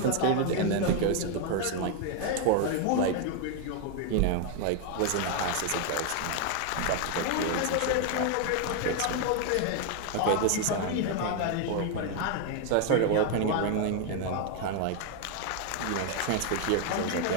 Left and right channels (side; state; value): both; different; correlation 0.01